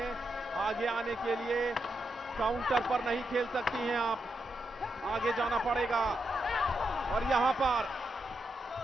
आगे आने के लिए। काउंटर पर नहीं खेल सकती हैं आप, आगे जाना पड़ेगा। और यहां पर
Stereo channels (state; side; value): normal; both; correlation 0.84